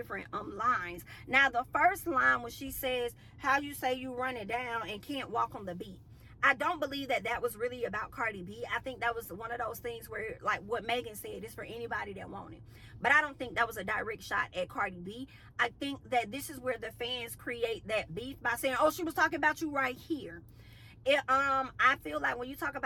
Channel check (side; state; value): both; identical; correlation 1.00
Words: lines. Now the first line, when she says how you say you run it down and can't walk on the beat, I don't believe that was really about Cardi B. I think that was one of those things where, like what Megan said, it's for anybody that want it. But I don't think that was a direct shot at Cardi B. I think that this is where the fans create that beef by saying, oh, she was talking about you right here. I feel like when you talk